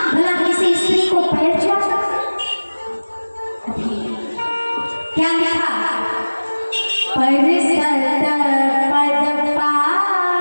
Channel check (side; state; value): both; inverted; correlation -1.00